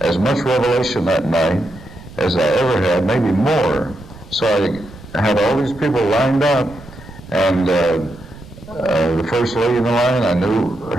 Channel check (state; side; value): noise; right; rumble, 19 dB below the sound